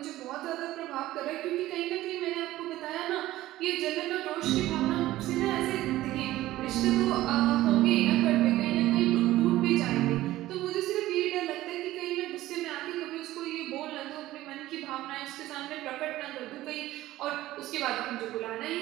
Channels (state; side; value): quieter; left; 15.8 dB